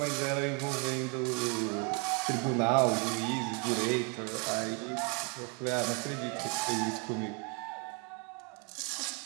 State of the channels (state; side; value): quieter; left; 35.2 dB